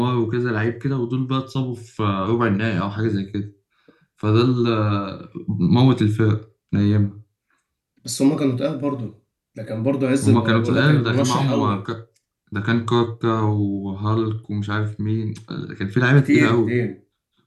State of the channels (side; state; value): both; identical; correlation 1.00